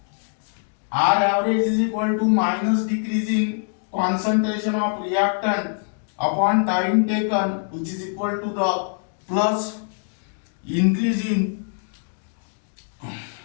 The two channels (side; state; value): right; silent; 59 dB below the other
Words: R average is equal to minus decreasing concentration of reactant upon time taken, which is equal to the plus increasing